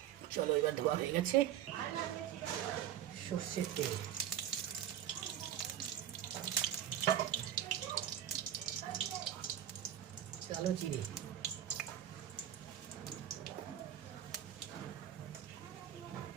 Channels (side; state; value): left; quieter; 10.9 dB